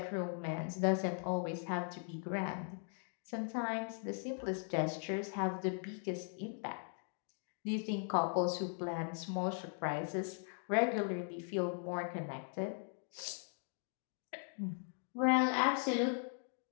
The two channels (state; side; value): silent; right; 52 dB below the other